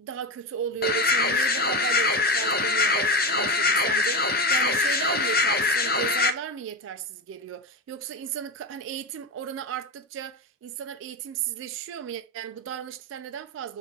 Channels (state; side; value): normal; both; correlation 0.18